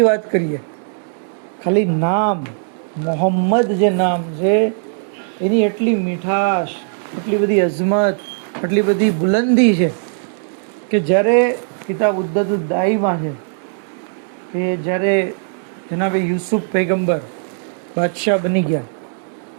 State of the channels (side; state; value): left; silent; digital silence